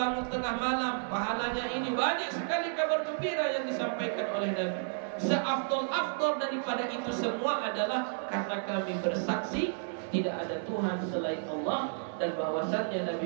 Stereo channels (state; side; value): silent; left; digital silence